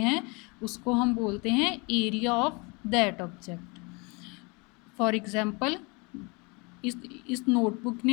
उसको हम बोलते हैं area of that object. For example, इस नोटबुक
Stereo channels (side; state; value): right; quieter; 29.4 dB